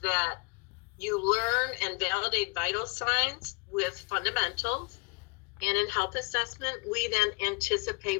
you learn and validate vital signs with fundamentals. And in health assessment, we then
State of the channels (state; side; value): quieter; right; 30.9 dB